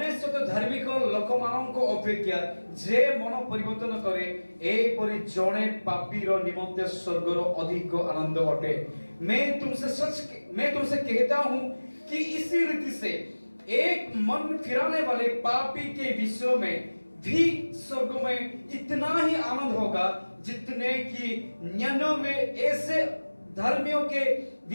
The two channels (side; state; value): both; inverted; correlation -1.00